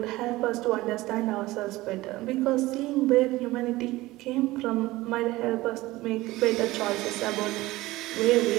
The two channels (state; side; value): quieter; left; 18.7 dB